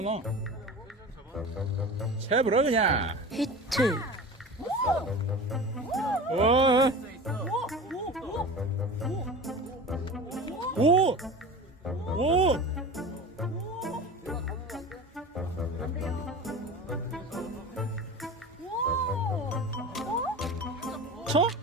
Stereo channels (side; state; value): both; normal; correlation 0.33